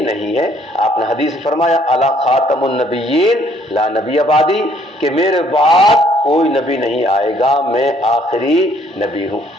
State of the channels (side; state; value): both; normal; correlation 0.64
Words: نہیں ہے۔ آپ نے حدیث فرمایا الا خاتم النبیین لا نبی بعدی، کہ میرے بعد کوئی نبی نہیں آئے گا، میں آخری نبی ہوں۔